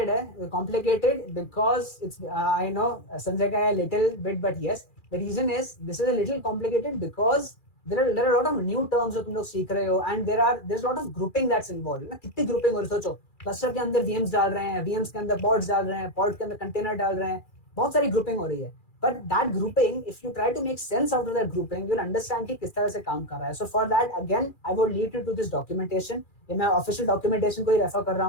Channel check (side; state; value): right; late; 2.4 ms